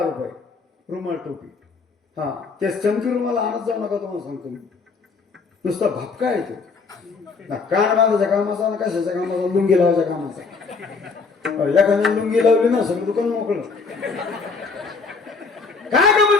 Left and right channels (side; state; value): right; quieter; 4.6 dB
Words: रुमाल टोपी. हा ते चमकी रुमाला आणत जाऊ नका तुम्हाला सांगतो मी. नुसता भपका येतो. कान बांधायच्या कामाचा आणि कशाच्या कामाचा लुंगी लावायच्या कामाचा. एखाद्या लुंगी लावली ना सगळं दुकान मोकळं. काय